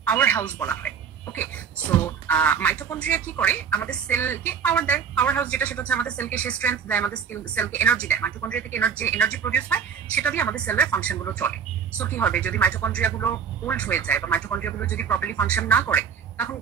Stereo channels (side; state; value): left; quieter; 7.0 dB